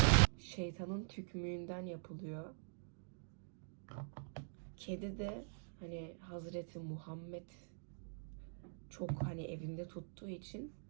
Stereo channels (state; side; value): silent; left; digital silence